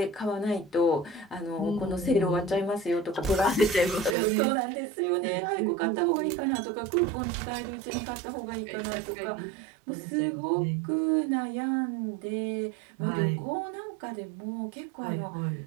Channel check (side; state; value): left; drops out; at 4.2 s